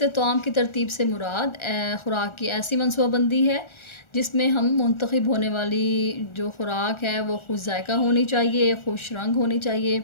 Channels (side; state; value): right; late; 1.4 ms